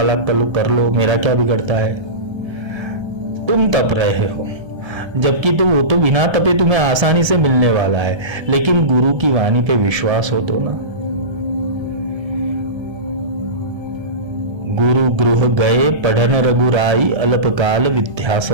लाख कर लो, मेरा क्या बिगड़ता है। तुम तप रहे हो, जबकि तो वो तो बिना तपे तुम्हें आसानी से मिलने वाला है। लेकिन गुरु की वाणी पे विश्वास हो तो ना। गुरु गृह गए पढ़न रघुराई, अल्पकाल विद्या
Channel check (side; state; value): left; late; 1.3 ms